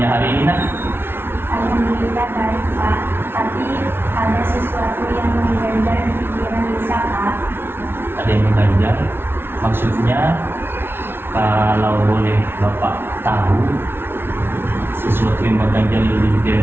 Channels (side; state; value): left; late; 0.11 ms